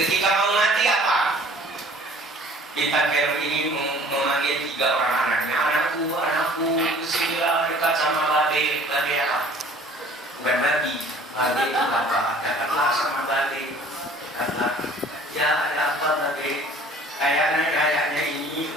mau mati apa? Di Tanggelem ini memanggil 3 orang anaknya. Anakku, kesinilah dekat sama babe apa? Bukan babi, babe itu apa? Dekatlah sama babe. Dekatlah. Ya ada apa babe? Kayaknya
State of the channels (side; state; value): both; normal; correlation 0.51